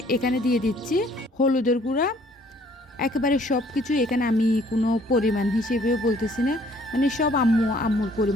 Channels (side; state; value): both; normal; correlation 0.60